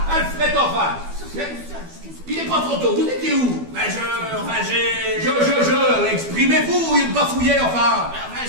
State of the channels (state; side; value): late; left; 12 ms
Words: Alfred, enfin. Il n'est pas trop tôt, vous étiez où? Ben j'ai... Exprimez-vous, il bafouillait, enfin. Ben,